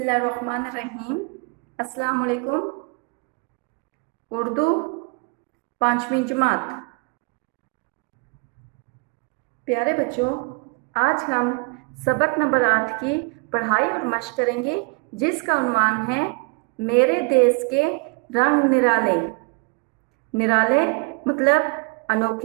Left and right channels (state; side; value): quieter; left; 33.7 dB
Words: الرحمن الرحیم۔ السلام علیکم۔ اردو 5ویں جماعت۔ پیارے بچوں، آج ہم سبق نمبر 8 کی پڑھائی اور مشق کریں گے، جس کا عنوان ہے میرے دیس کے رنگ نرالے۔ نرالے مطلب